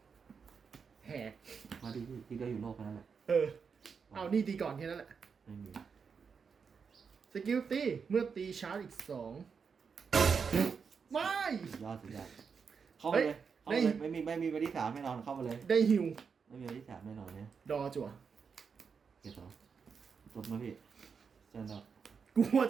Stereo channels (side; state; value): left; quieter; 5.9 dB